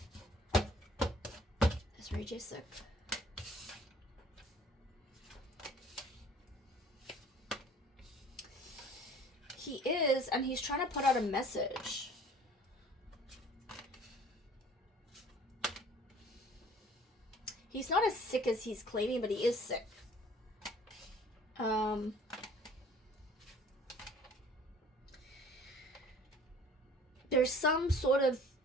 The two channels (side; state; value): both; normal; correlation 0.51